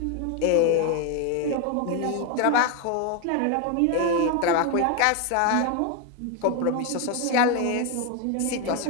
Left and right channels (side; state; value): both; different; correlation 0.02